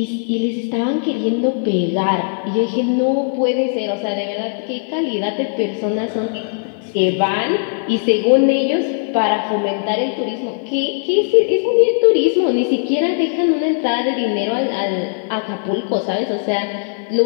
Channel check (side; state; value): right; silent; digital silence